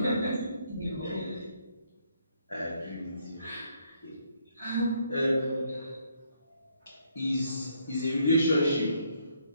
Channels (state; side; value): inverted; both; correlation -0.70